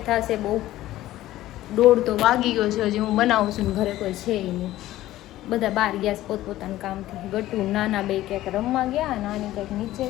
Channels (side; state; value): right; quieter; 15.2 dB